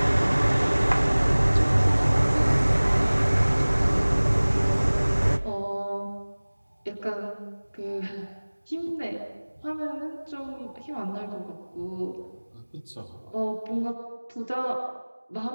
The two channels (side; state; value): both; inverted; correlation -1.00